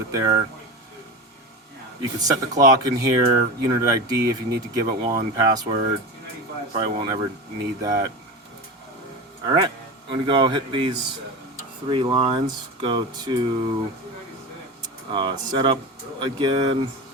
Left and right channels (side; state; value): both; normal; correlation 0.26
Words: it there. You can set the clock in here, unit ID if you need to give it one, password. Probably won't ever need that. Alright, I'm going to go hit these 3 lines. Go to setup again.